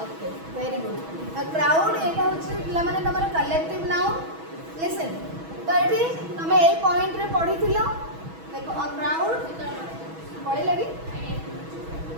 okay very good a crowd एटा होछि पिला माने तमरे कलेक्टिव नाउन लिसन तो एठी तमे ए पॉइंट रे पढिथिलो देखो अ क्राउड पढि लगी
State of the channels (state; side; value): late; left; 6.2 ms